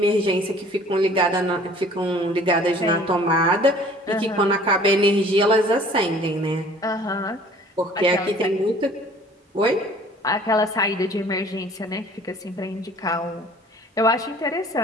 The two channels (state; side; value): normal; both; correlation 0.51